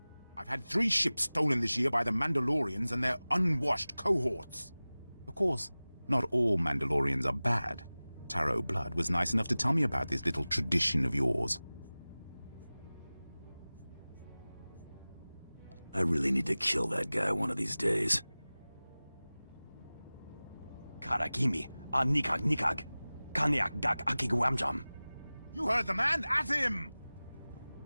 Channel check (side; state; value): both; inverted; correlation -0.98